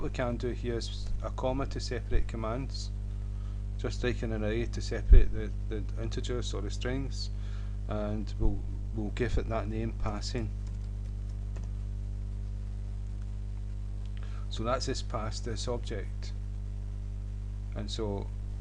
we can do here is a comma to separate commands, just like an array to separate the integers or the strings, and we'll give it that name, passing. So that's this pass, this object, and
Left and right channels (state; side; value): identical; both; correlation 1.00